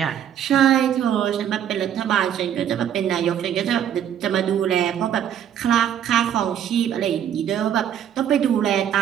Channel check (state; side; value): quieter; left; 9.6 dB